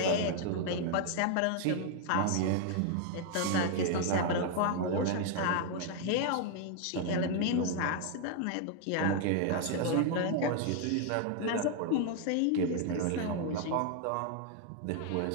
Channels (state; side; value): different; both; correlation 0.00